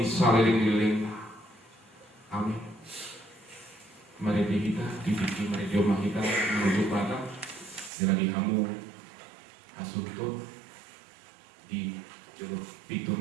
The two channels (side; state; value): left; drops out; at 7.9 s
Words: saliling-liling. Amin. Mari kita dipikir mari jomah kita menuju pada dengan dihamu asuh tu di juruk pitu